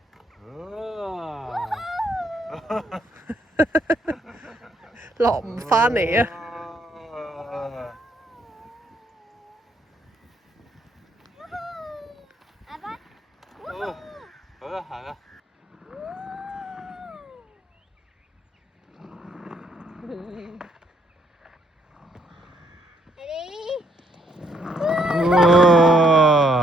落唔返嚟啊！阿爸，好啦，行啦。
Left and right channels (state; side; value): normal; both; correlation 0.70